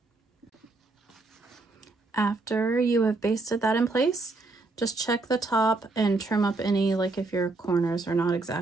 After you have basted that in place, just check the top and trim up any, like if your corners are not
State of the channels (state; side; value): quieter; left; 3.3 dB